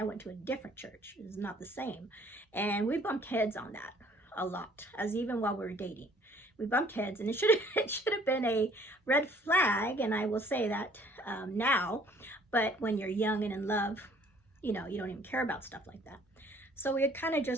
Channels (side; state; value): both; normal; correlation 0.58